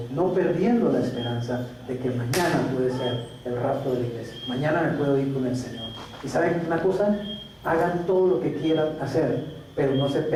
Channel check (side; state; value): both; identical; correlation 1.00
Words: no perdiendo la esperanza de que mañana puede ser el rapto de la iglesia. Mañana me puedo ir con el Señor. Y ¿saben una cosa? Hagan todo lo que quieran hacer, pero no se